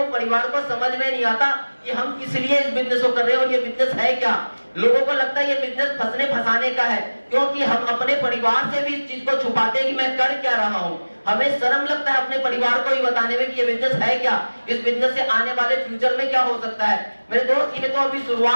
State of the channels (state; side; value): inverted; both; correlation -1.00